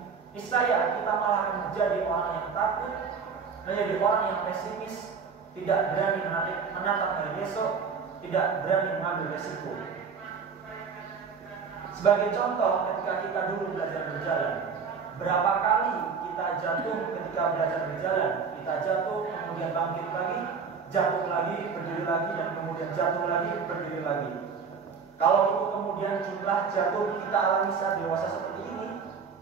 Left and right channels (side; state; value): left; quieter; 5.8 dB